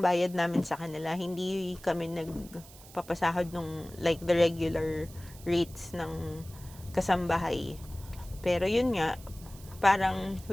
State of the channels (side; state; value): right; noise; hiss, 20 dB below the sound